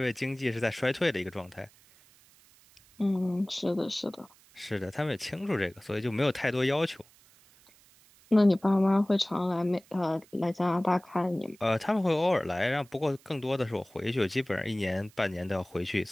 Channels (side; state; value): right; noise; hiss, 28 dB below the sound